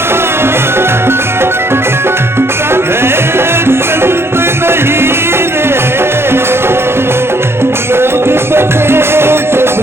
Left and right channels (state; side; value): late; left; 0.12 ms